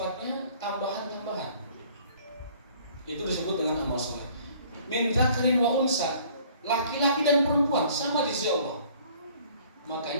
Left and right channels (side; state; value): both; inverted; correlation -0.55